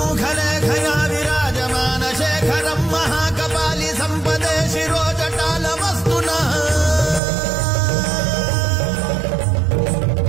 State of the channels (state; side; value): drops out; left; at 7.2 s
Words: विराजमान शेखरं महाकपालि सम्पदे शिरोजटालमस्तु नः